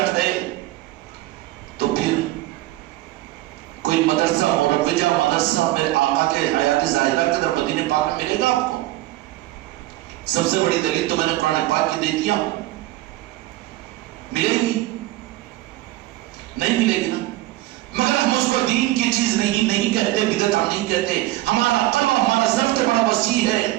ہے تو پھر کوئی مدرسہ مروجہ مدرسہ میرے آقا کے حیات ظاہرہ کے در مدینہ پاک میں ملے گا آپ کو؟ سب سے بڑی دلیل تو میں نے قرآن پاک کی دے دیا، ملے گی نہیں ملے گی نا، مگر ہم اس کو دین کی چیز نہیں کہتے، بدعت ہم نہیں کہتے، ہمارا قلب ہمارا ضبط بڑا وسیع ہے۔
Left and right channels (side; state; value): left; quieter; 17.1 dB